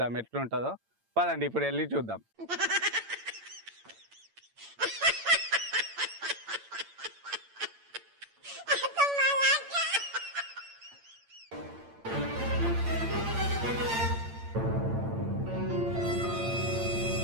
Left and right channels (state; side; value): late; left; 8.8 ms